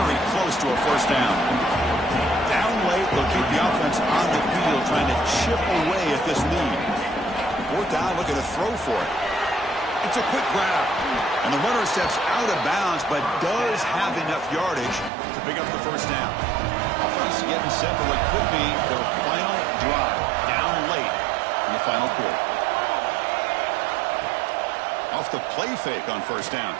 close to a first down. Down late, they'll keep the offense on the field, trying to chip away at this lead. Fourth down, looking to throw for it. It's a quick grab. And the runner steps out of bounds, but does have enough yardage to pick up the first down. Offense getting set for what could be their final drive. Down late in the final quarter. Off the play fake on first down.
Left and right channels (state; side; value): drops out; left; at 15.1 s